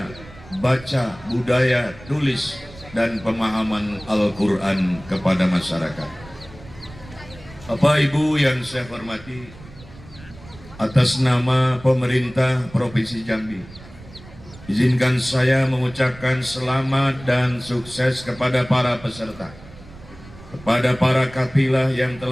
baca, budaya tulis, dan pemahaman Al-Quran kepada masyarakat. Bapak Ibu yang saya hormati, atas nama pemerintah Provinsi Jambi, izinkan saya mengucapkan selamat dan sukses kepada para peserta, kepada para kafilah yang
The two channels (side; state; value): right; noise; rumble, 19 dB below the sound